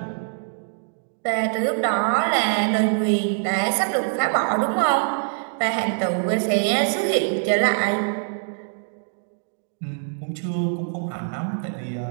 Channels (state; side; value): silent; left; digital silence